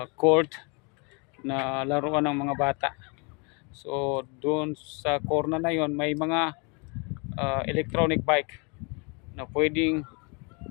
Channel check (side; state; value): right; quieter; 32.8 dB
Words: court na laruan ng mga bata. So doon sa corner na yon may mga electronic bike na pwedeng